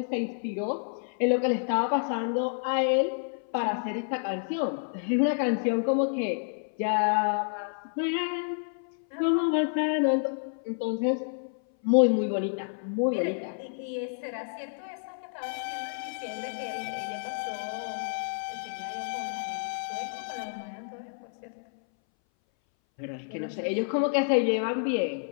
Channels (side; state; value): right; silent; 58 dB below the other